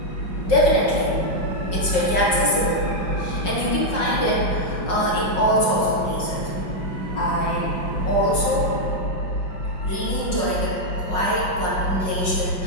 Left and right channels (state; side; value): late; right; 5.5 ms